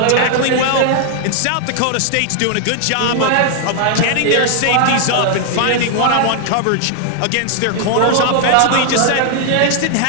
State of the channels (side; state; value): both; different; correlation 0.00